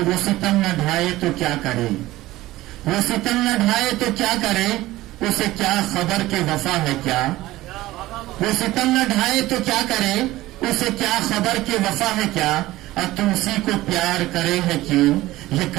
وہ ستم نہ ڈھائے تو کیا کرے، وہ ستم نہ ڈھائے تو کیا کرے، اسے کیا خبر کہ وفا ہے کیا، وہ ستم نہ ڈھائے تو کیا کرے، اسے کیا خبر کہ وفا ہے کیا، اور تم اسی کو پیار کرے ہے کیوں، یہ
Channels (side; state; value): left; quieter; 17.1 dB